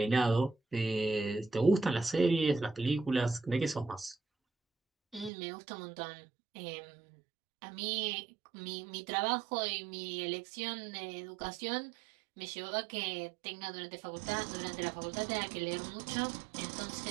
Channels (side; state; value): left; drops out; at 5.3 s